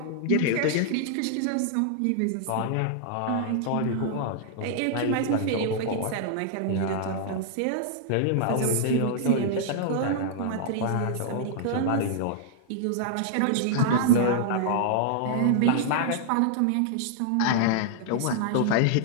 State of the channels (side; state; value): both; different; correlation -0.01